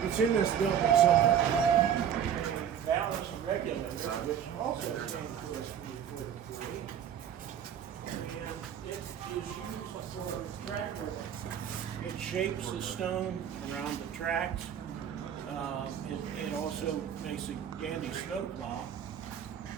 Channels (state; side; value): quieter; left; 8.9 dB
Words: it's in this building somewhere. Balance and regulators, which also came to us from the 43. And it is used for track work. It shapes the stone around the tracks. It also makes a dandy snowplow.